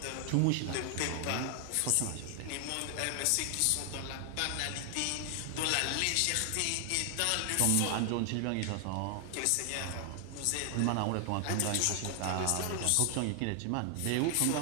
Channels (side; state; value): both; different; correlation 0.00